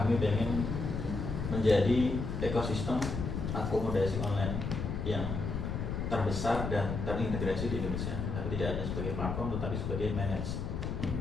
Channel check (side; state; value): left; noise; rumble, 3 dB below the sound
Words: pengen menjadi ekosistem akomodasi online yang terbesar dan terintegrasi di Indonesia. Tapi tidak hanya sebagai platform, tetapi sebagai manage.